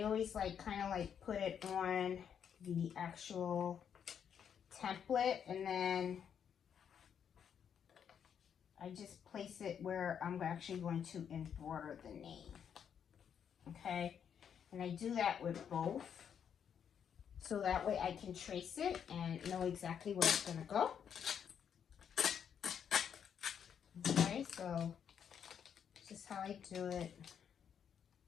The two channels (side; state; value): right; quieter; 8.1 dB